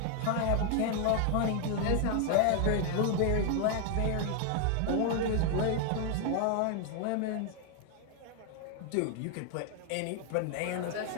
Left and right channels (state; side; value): different; both; correlation 0.00